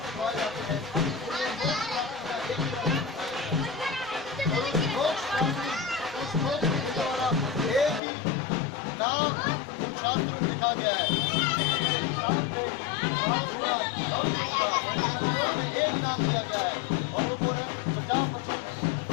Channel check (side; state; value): right; drops out; at 8.0 s